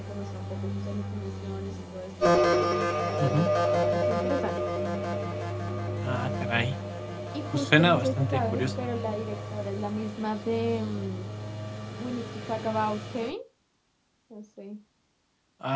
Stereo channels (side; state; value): both; identical; correlation 1.00